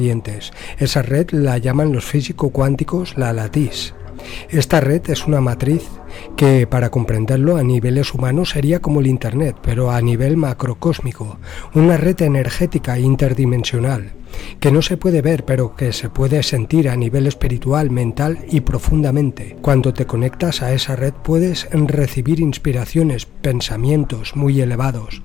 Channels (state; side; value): quieter; right; 10.1 dB